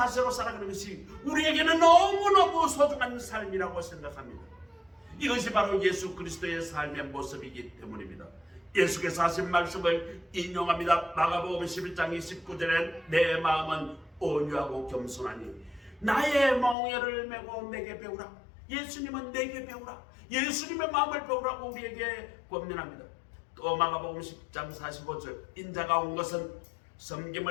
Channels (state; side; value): drops out; right; at 16.8 s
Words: 살아가는 것이 우리에게는 너무너무 소중한 삶이라고 생각합니다. 이것이 바로 예수 그리스도의 삶의 모습이기 때문입니다. 예수께서 하신 말씀을 인용합니다. 마가복음 11장 29절에 내 마음은 온유하고 겸손하니 나의 멍에를 메고 내게 배우라. 예수님은 내게 배우라. 예수님의 마음을 배우라고 우리에게 권면합니다. 또 마가복음 10장 45절 인자가 온 것은